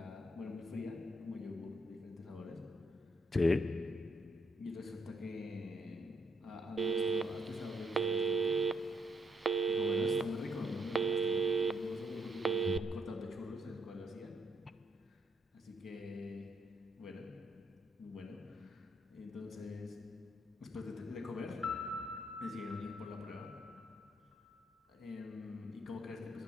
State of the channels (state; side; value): normal; both; correlation 0.74